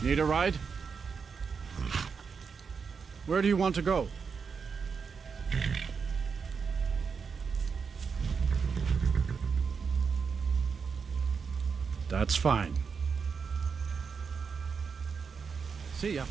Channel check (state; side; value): quieter; left; 5.7 dB